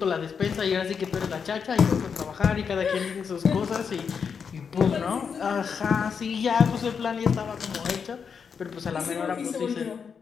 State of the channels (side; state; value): right; quieter; 6.4 dB